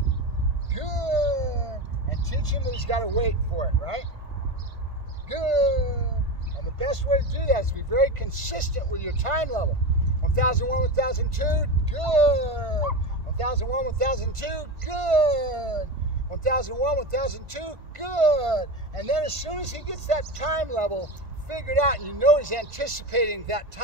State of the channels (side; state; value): left; late; 1.5 ms